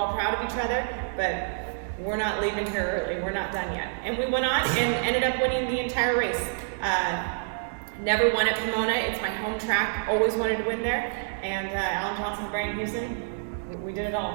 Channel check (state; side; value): silent; left; digital silence